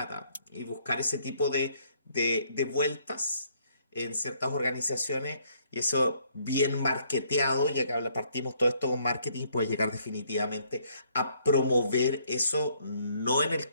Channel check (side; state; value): both; inverted; correlation -0.67